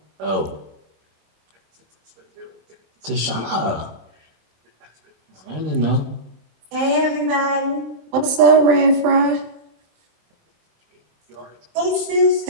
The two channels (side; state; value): left; late; 27 ms